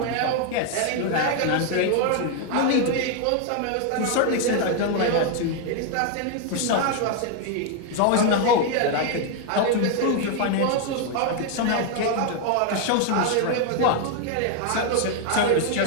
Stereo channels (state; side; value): different; both; correlation 0.00